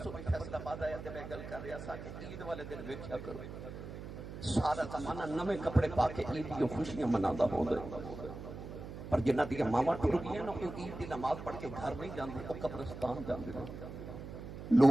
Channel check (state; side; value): noise; right; hum, 10 dB below the sound